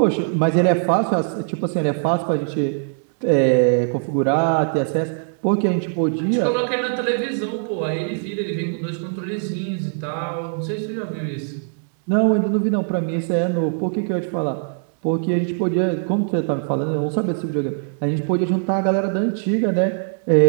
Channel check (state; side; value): silent; left; digital silence